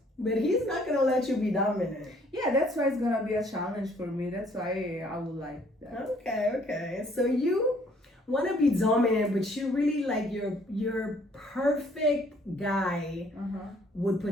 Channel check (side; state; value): both; normal; correlation 0.62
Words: But he's not gonna let you be dominant. Yeah, that's why it's gonna be a challenge for me. That's why I would like that. Okay. So you want to be dominant, but you really like your perfect guy would